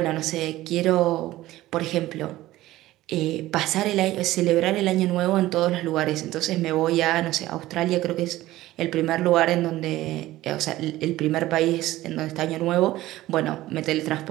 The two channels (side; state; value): left; quieter; 16.2 dB